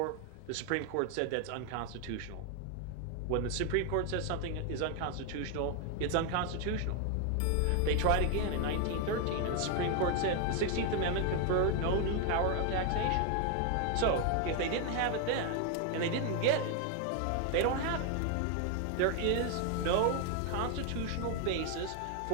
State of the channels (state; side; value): different; both; correlation 0.01